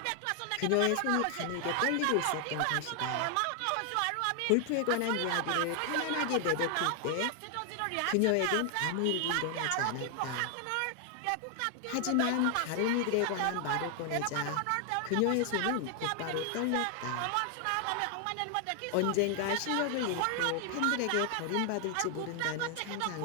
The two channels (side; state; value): both; different; correlation 0.00